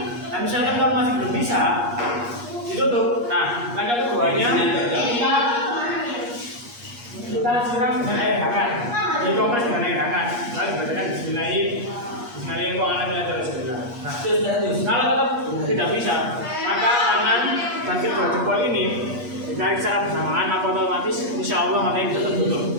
Nah, misalkan kalau masih belum bisa ditutup. Nah, langkah keduanya kita siram dengan air hangat, dikompres dengan air hangat, lalu dibacakan Bismillahirrahmanirrahim. Nah, kalau tetap tidak bisa, maka tangan dan kedua jempol ini ditarik secara bersamaan, maka otomatis insya Allah matanya bisa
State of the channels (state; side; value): late; left; 8.4 ms